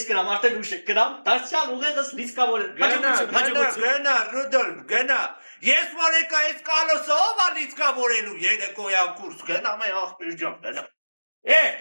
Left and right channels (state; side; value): inverted; both; correlation -1.00